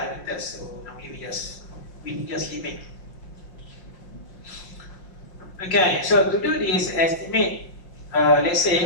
So normally we just limit. Okay, so to do this estimate, let's say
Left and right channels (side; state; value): right; late; 5.6 ms